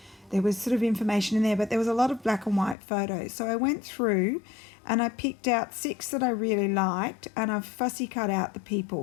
there was sort of information in there, but there was a lot of black and white photos. So I went through and I picked out 6 that I really liked, and I've fussy cut out the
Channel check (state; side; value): drops out; right; at 2.8 s